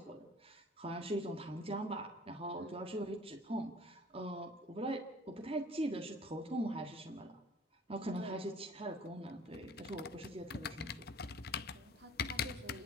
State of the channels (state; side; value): normal; both; correlation 0.50